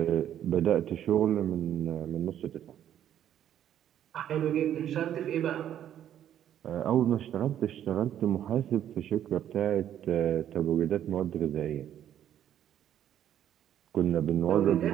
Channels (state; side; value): quieter; left; 10.7 dB